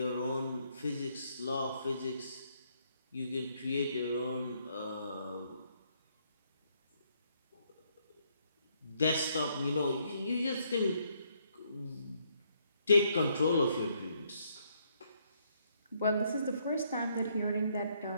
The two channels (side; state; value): both; inverted; correlation -0.72